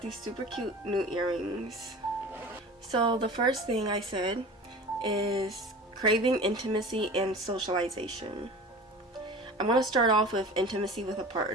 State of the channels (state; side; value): normal; both; correlation 0.37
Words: these super cute new earrings. So the first thing I said is craving intimacy and socialization. I'm gonna start off with intimacy with a